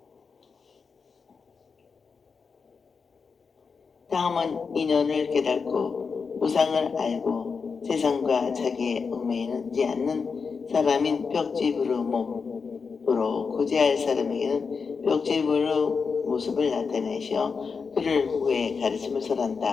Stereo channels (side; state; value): right; quieter; 5.3 dB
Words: 다음은 인연을 깨닫고 우상을 알고 세상과 자기의 얽매이지 않는 사람인 벽지부의 몸으로 구제할 사람에게는 벽지부의 모습을 나타내시어 그를 후에 가르침을